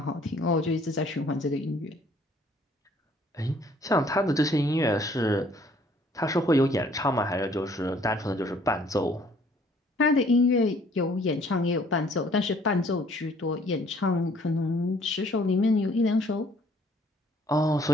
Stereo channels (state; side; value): normal; both; correlation 0.60